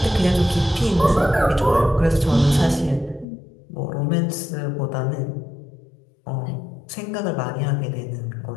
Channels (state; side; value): drops out; right; at 3.2 s